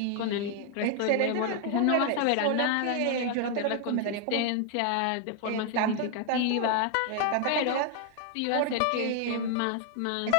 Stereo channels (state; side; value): different; both; correlation 0.00